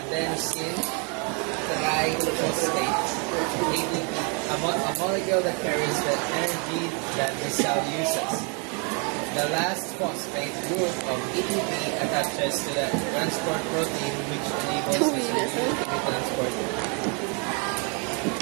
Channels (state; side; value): quieter; left; 35.9 dB